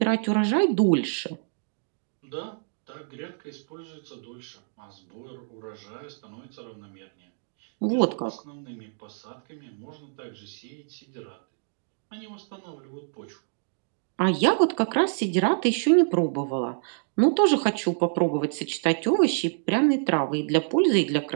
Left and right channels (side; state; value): left; silent; 60 dB below the other